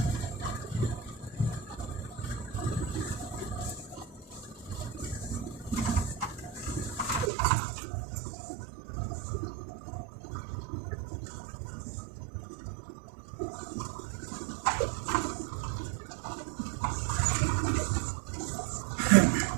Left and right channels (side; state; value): left; drops out; at 7.3 s